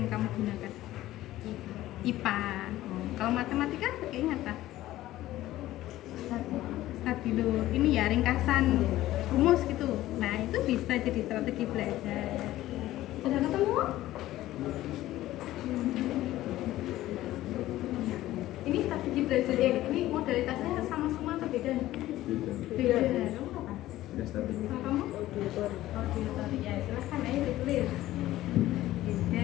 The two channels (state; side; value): quieter; right; 15.2 dB